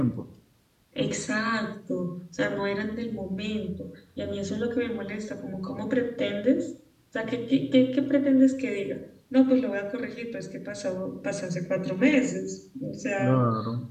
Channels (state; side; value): identical; both; correlation 1.00